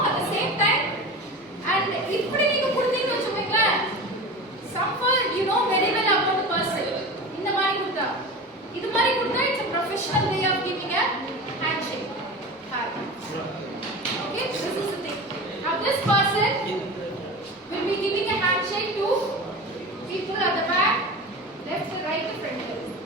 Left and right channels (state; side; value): normal; both; correlation 0.30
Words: at the same time. And இப்படி நீங்க கொடுத்தீங்கன்னு வச்சுக்கோங்களேன், someone you know very well about the person. இந்த மாதிரி கொடுத்தா, இது மாதிரி கொடுத்தா it's a professional way of giving a handshake. Okay, this is the thing. Now this person will be giving a handshake to people at the back, left, right, front.